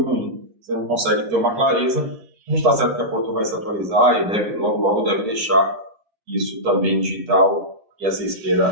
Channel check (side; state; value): left; late; 8.3 ms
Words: ruim. Você não consegue ter uma clareza. A gente está certo que a Porto vai se atualizar e logo deve deixar isso também digital e essa